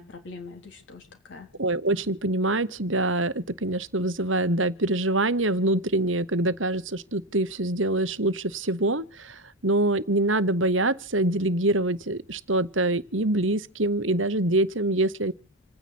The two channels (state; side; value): normal; both; correlation 0.12